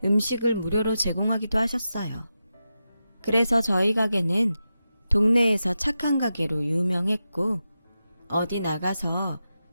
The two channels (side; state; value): both; inverted; correlation -0.90